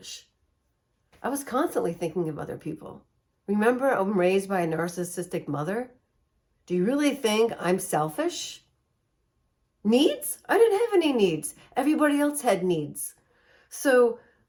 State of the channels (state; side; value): identical; both; correlation 1.00